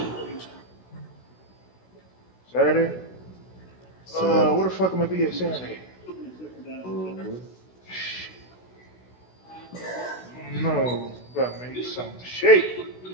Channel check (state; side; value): late; right; 16 ms